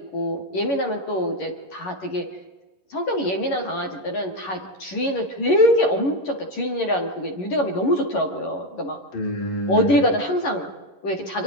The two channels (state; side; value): late; right; 11 ms